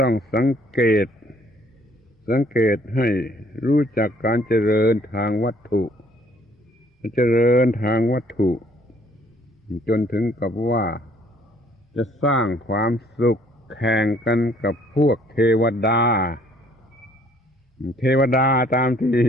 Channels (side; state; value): both; normal; correlation 0.62